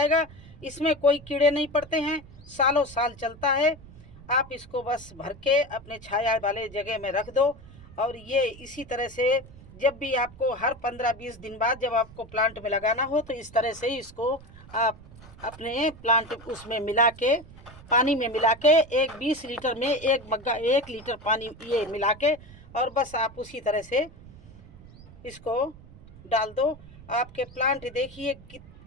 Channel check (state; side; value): noise; right; rumble, 19 dB below the sound